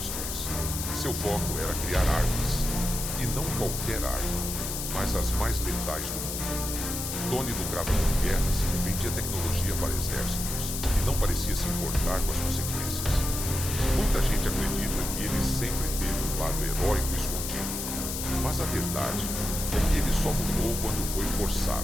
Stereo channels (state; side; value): noise; left; hiss, 4 dB below the sound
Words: Seu foco era criar armas. E não qualquer arma, mas as mais letais do mundo. Tony lucrava com guerras, vendia tecnologia para exércitos e não parecia se importar com as consequências. Muita gente acredita que ele sempre teve um lado heróico escondido, mas a verdade é que ele só mudou quando foi